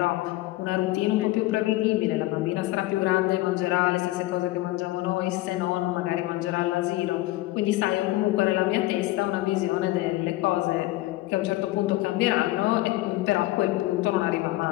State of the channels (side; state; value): right; quieter; 17.9 dB